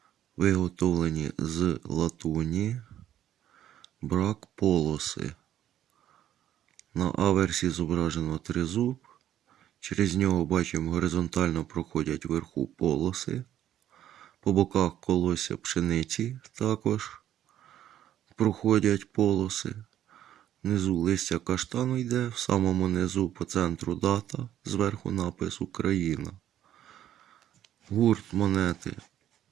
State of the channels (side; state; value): left; quieter; 11.5 dB